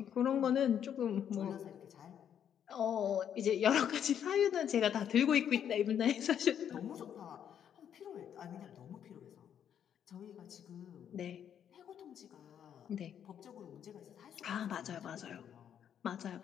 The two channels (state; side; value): quieter; right; 9.1 dB